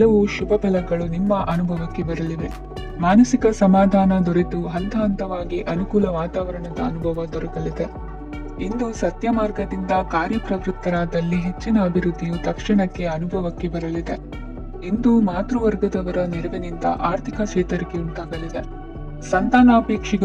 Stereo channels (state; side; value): identical; both; correlation 1.00